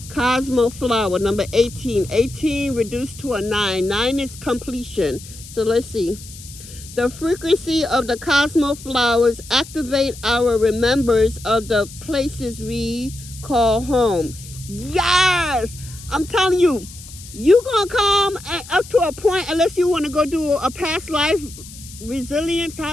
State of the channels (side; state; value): left; noise; hiss, 17 dB below the sound